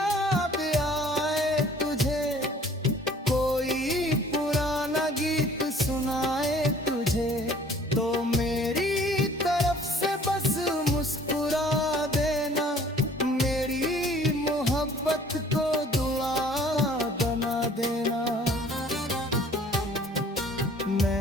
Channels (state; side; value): normal; both; correlation 0.53